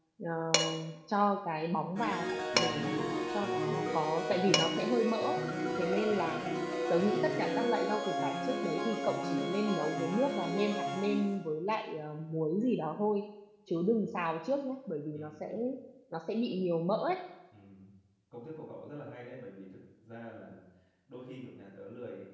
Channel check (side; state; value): both; identical; correlation 1.00